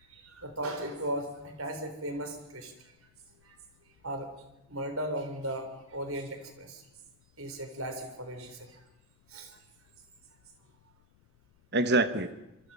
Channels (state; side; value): noise; left; rumble, 29 dB below the sound